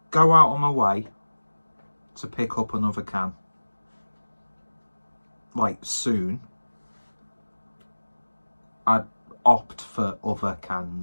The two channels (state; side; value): inverted; both; correlation -1.00